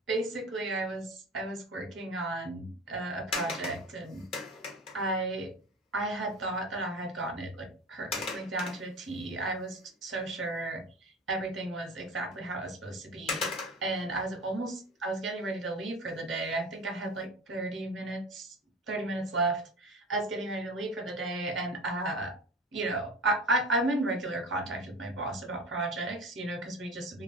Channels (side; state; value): both; normal; correlation 0.33